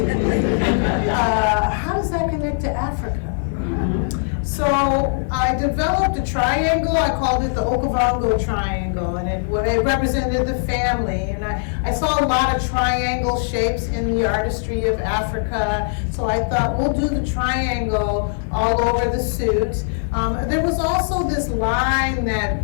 How does that connect to Africa? So I developed a triangle. I called it the Okavango triangle, and it represented the family. And I saw a lot of triangle shapes in the artistry of Africa. So I thought, we'll do the triangle all over the suit. There was also this line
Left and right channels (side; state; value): right; silent; 56 dB below the other